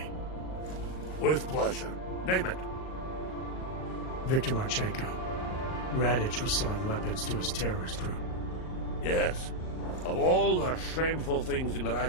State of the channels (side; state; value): right; late; 38 ms